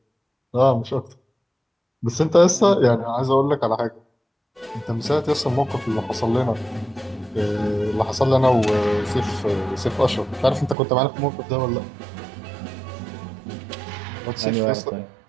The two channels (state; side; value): drops out; left; at 10.8 s